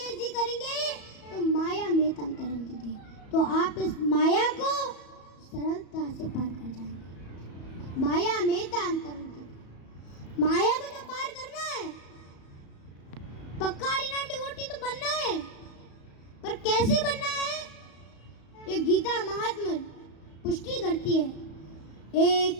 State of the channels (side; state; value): right; late; 34 ms